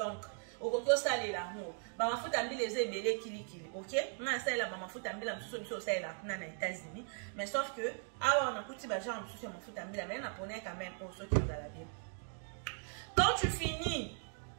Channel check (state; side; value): silent; left; 52 dB below the other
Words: okoki osalela yango ba mafuta mbila eza ebele kilikili. OK? Na salela ba mafuta mbila msusu biso osalela kuna na États-Unis, mais sauf que awa on a kuti ba genre msusu ya mafuta mbila mais na pona quand même pour ceux qui vous allez bien. Quand tu finis,